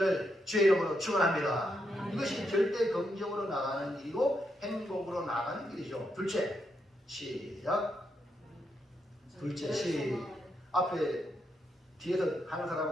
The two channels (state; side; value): normal; both; correlation 0.80